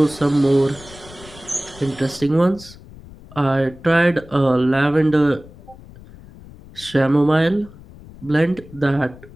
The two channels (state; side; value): noise; left; rumble, 20 dB below the sound